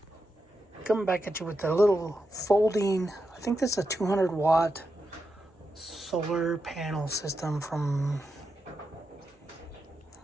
Coming back at you with a little folding, I think this is a 200 watt solar panel system from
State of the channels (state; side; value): normal; both; correlation 0.87